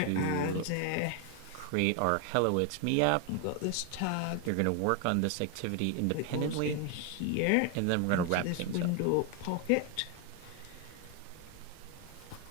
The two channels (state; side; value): different; both; correlation 0.01